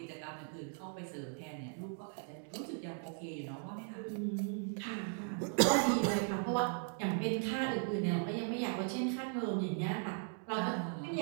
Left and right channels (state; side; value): silent; left; 53 dB below the other